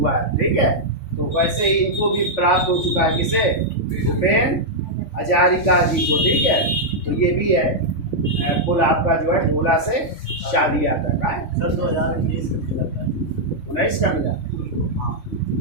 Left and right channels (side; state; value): right; late; 3.5 ms